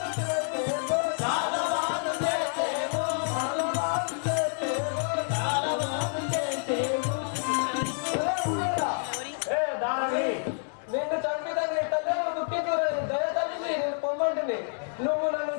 నిన్ను చంపిదని తల్లి దుఃఖించుకుని దయతల్లి నేను పొమ్మంటిని. నువ్వు నన్ను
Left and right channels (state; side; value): silent; right; digital silence